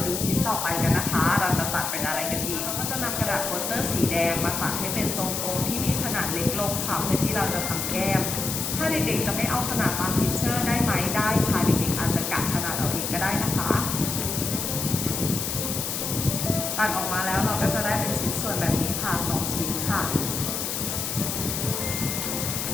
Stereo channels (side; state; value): left; noise; hiss, 2 dB below the sound